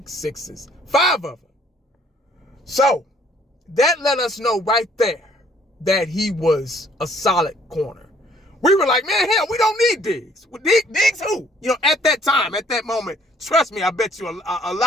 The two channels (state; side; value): normal; both; correlation 0.61